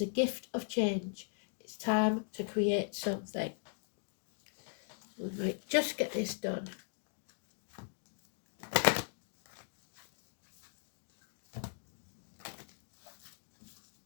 a gift of change. It's time to create something. Right, just get this done.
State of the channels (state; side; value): silent; right; digital silence